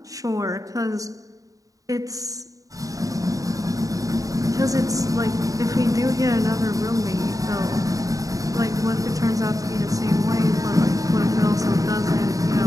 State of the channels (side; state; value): left; late; 0.17 ms